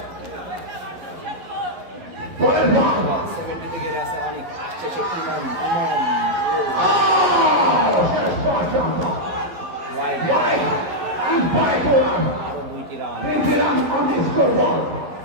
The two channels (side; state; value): left; late; 11 ms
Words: পরের বল 70 গেড়ে আছে অনেক, আসছে সে ইমন শেষ পর্যন্ত ওয়াইড, and by one, আরো 2টি run. 3 run on the scoreboard.